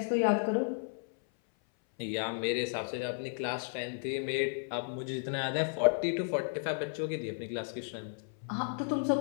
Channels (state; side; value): silent; right; 55 dB below the other